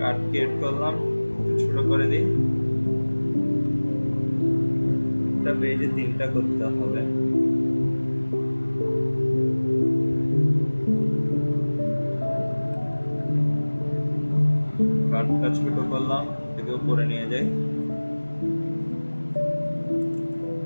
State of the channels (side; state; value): both; inverted; correlation -1.00